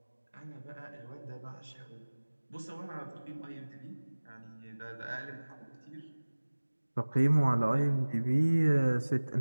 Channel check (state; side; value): inverted; both; correlation -1.00